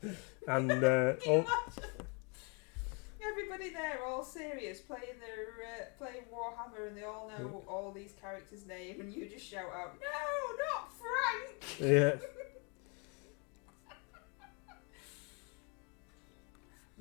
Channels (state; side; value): quieter; right; 34.0 dB